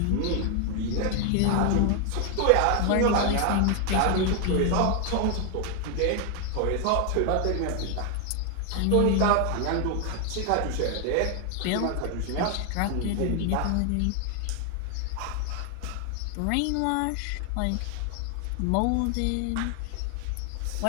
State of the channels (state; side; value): different; both; correlation 0.00